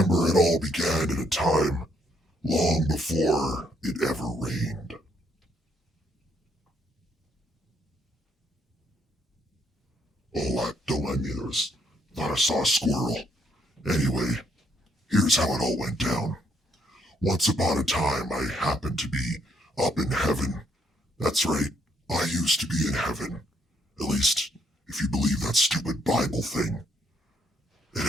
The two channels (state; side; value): normal; both; correlation 0.71